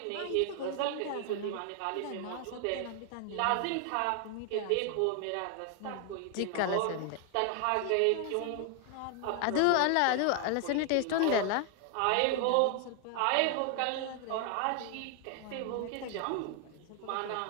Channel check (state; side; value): different; both; correlation 0.00